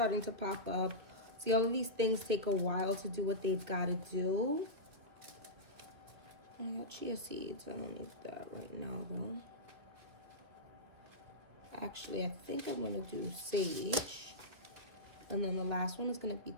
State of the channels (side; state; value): left; late; 2.3 ms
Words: to pop up. See, all of these things take a while to do what they've got to do. I got chia seeds. I don't need that right now, though. Actually, I think I'm going to do sage. And then the last one is going to be